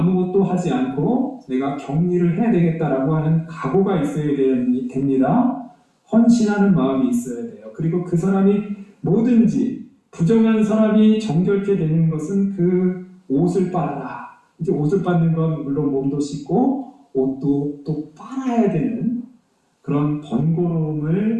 하지 않고 내가 격리를 해야 되겠다라고 하는 각오가 있어야 됩니다. 헌신하는 마음이 있어야 돼요. 그리고 그 사람이 뭐든지 부정한 사람이 정결케 되는 것은 그 옷을 빨아라. 이제 옷을 빨는 건 물론 몸도 씻고 옷도 또 빨아야 되는 그런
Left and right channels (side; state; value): both; identical; correlation 1.00